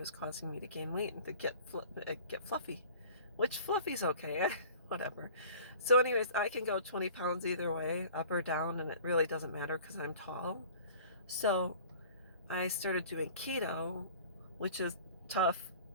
causing me to gain weight and to get fluffy, which fluffy's okay, whatever. So anyways, I can go 20 pounds either way, up or down, and it really doesn't matter because I'm tall. So I started doing keto, which is tough.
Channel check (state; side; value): inverted; both; correlation -0.46